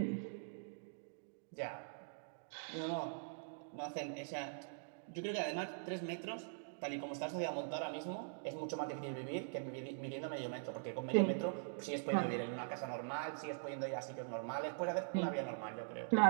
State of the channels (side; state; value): left; silent; digital silence